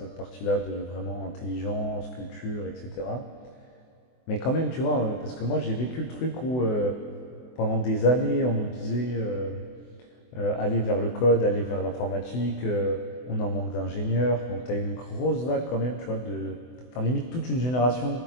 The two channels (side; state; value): right; late; 24 ms